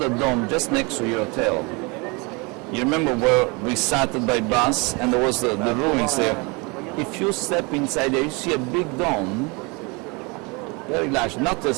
dome just next to your hotel. You remember where we started by bus and there was the ruins there. If you step inside there, you see a big dome, very large, not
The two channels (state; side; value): quieter; left; 28.6 dB